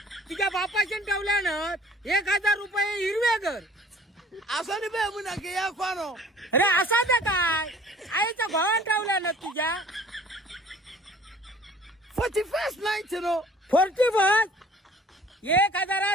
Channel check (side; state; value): both; normal; correlation 0.51